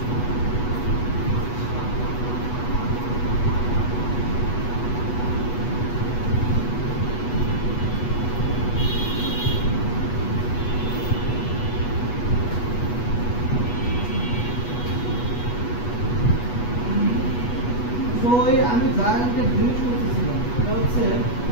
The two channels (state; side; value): late; right; 8.2 ms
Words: তো আমি যা একটা জিনিস করতেছিলাম সেটা হচ্ছে